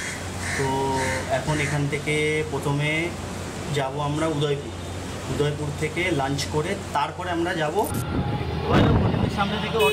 তো এখন এখান থেকে প্রথমে যাব আমরা উদয়পুর থেকে লাঞ্চ করে তারপরে আমরা যাব হোটেলের সামনে থেকে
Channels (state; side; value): identical; both; correlation 1.00